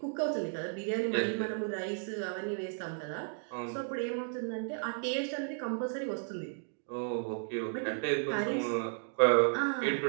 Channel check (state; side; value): silent; left; 55 dB below the other